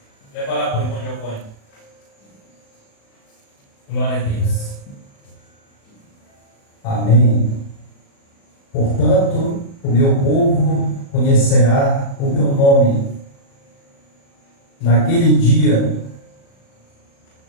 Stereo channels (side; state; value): right; late; 36 ms